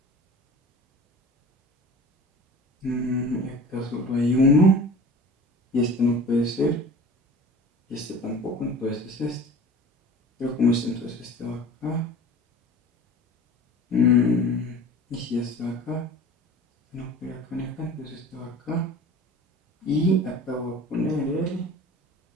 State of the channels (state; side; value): normal; both; correlation 0.40